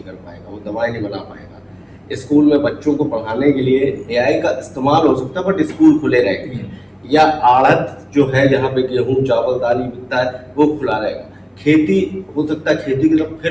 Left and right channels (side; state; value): both; identical; correlation 1.00